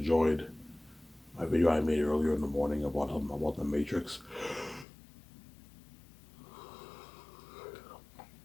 my video I made earlier in the morning about the Matrix.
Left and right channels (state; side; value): drops out; right; at 4.9 s